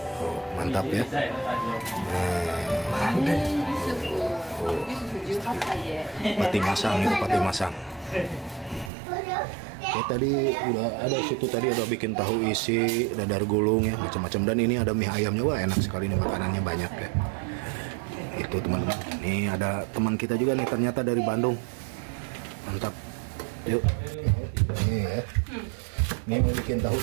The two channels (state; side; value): drops out; left; at 8.9 s